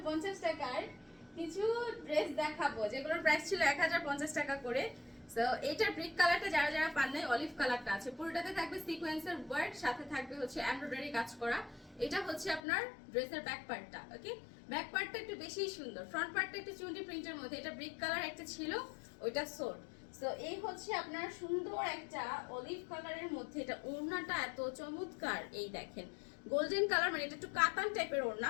টাকার কিছু ড্রেস দেখাবো, যেগুলোর প্রাইস ছিল 1050 টাকা করে। সো এটার ব্রিক কালারটা যারা যারা পান নাই, অলিভ কালারটা আছে। পুরোটাতে থাকবে সিকোয়েন্সের ওয়ার্ক, সাথে থাকবে হচ্ছে এমব্রয়ডারি কাজ করা। এটা হচ্ছে আপনার ড্রেসের ব্যাক পার্টটা। ওকে, ব্যাক পার্টটা একটু বেশি সুন্দর, ফ্রন্ট পার্টটা একটু চুন্ডি প্রিন্টের মধ্যে। এটা ব্রিক কালার একটা ছিল, ওইটা সোট। সো এই হচ্ছে আপনার সুন্দর একটা অলিভ কালারের মধ্যে। এটা ওড়নাটা এত চমৎকার, এই দেখেন গোল্ডেন কালার, মানে এটা একটু কাতান টাইপের ওড়না,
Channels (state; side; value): drops out; right; at 12.6 s